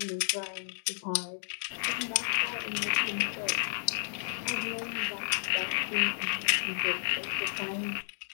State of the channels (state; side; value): silent; right; digital silence